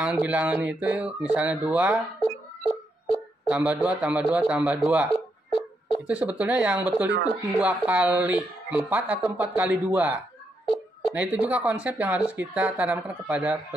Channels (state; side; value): normal; both; correlation 0.80